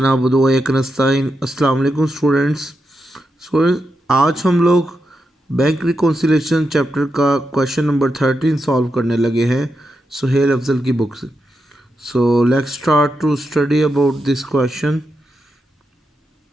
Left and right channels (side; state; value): both; normal; correlation 0.86